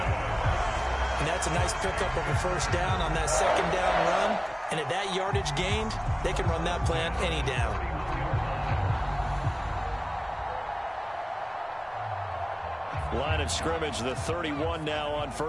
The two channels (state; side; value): identical; both; correlation 1.00